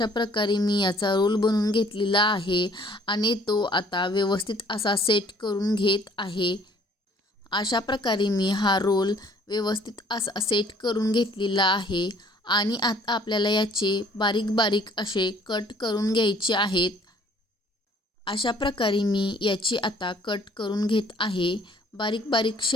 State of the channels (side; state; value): both; normal; correlation 0.57